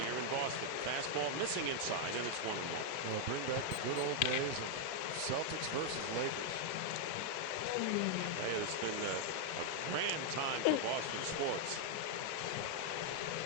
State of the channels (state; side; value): different; both; correlation 0.00